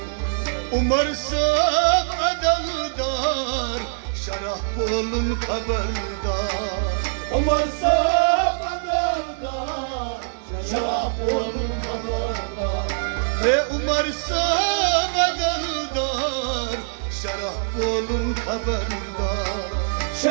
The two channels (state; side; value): silent; left; digital silence